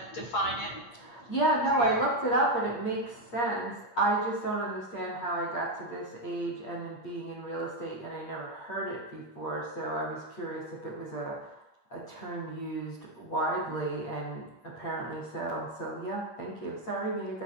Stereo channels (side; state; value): right; late; 8.5 ms